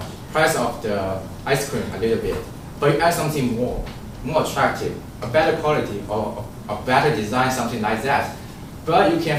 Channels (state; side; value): identical; both; correlation 1.00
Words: price of the ice cream a little bit, but you add something more attractive, a better quality, or a better design, something like that. But you